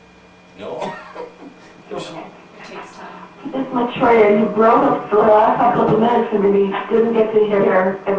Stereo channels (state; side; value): identical; both; correlation 1.00